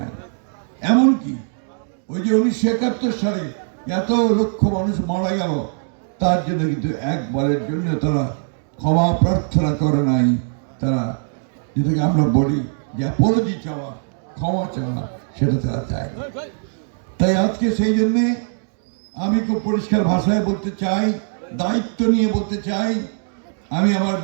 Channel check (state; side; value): silent; left; digital silence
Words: এমনকি ওই যে 1971 সালে এত লক্ষ মানুষ মারা গেল, তার জন্য কিন্তু একবারের জন্য তারা ক্ষমা প্রার্থনা করে নাই। তারা যেটাকে আমরা বলি যে অ্যাপোলজি চাওয়া, ক্ষমা চাওয়া, সেটা তারা চায়। তাই আজকে সেই জন্যে আমি খুব পরিষ্কার ভাষায় বলতে চাই, দায়িত্ব নিয়ে বলতে চাই, আমি আমার